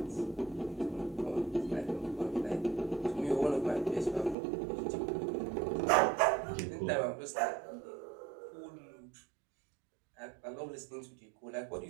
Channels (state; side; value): drops out; left; at 4.4 s